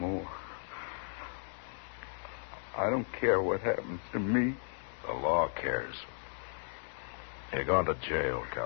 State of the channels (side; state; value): right; silent; digital silence